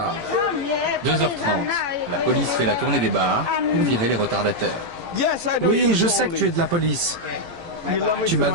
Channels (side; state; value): left; late; 18 ms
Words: 2h30, la police fait la tournée des bars pour virer les retardataires. Oui, je sais que tu es de la police. Tu